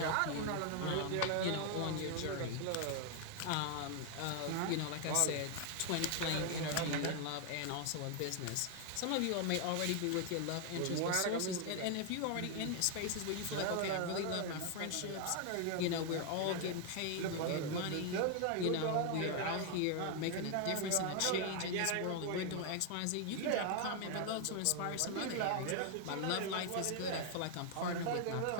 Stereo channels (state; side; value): different; both; correlation 0.00